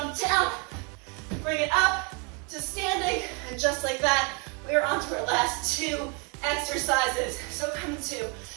down, bring it up to standing, and just like that, we are on to our last 2 exercises. So come to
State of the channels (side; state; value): left; quieter; 33.5 dB